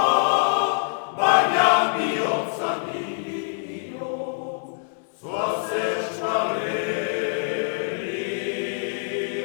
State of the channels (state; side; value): silent; right; 62 dB below the other